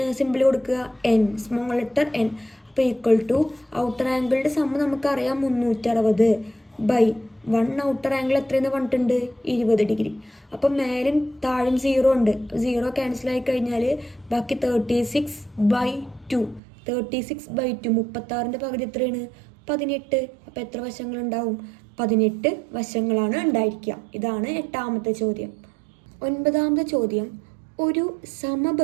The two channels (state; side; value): drops out; left; at 16.6 s